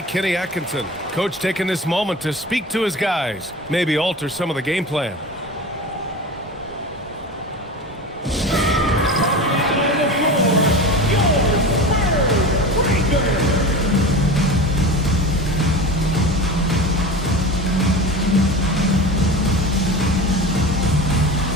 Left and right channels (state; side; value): normal; both; correlation 0.31